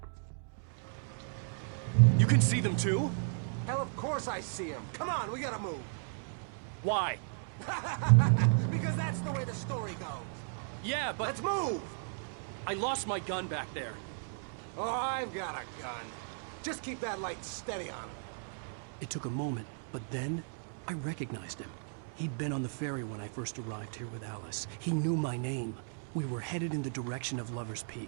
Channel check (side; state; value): left; silent; digital silence